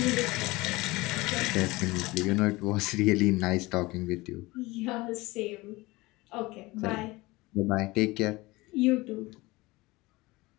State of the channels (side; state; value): right; quieter; 21.4 dB